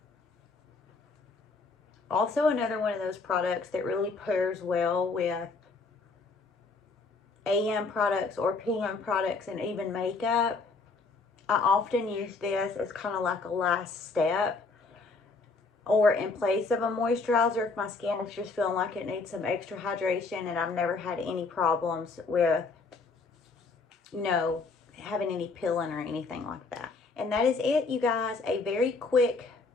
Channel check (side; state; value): right; quieter; 4.0 dB